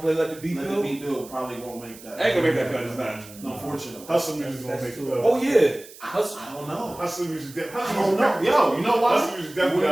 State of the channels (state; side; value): noise; right; hiss, 19 dB below the sound